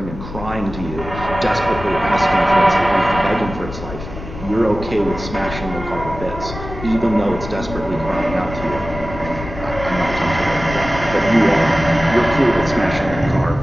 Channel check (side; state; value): left; noise; rumble, 11 dB below the sound